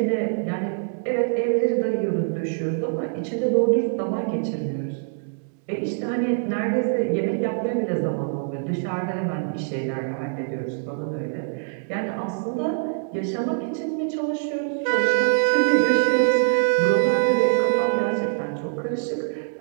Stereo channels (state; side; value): silent; left; digital silence